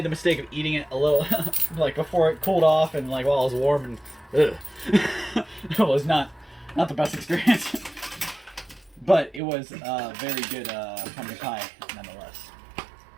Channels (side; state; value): left; drops out; at 9.4 s